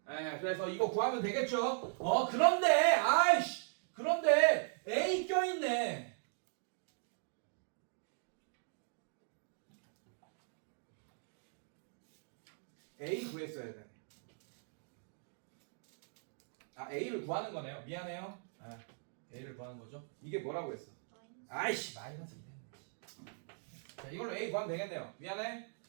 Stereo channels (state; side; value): silent; left; digital silence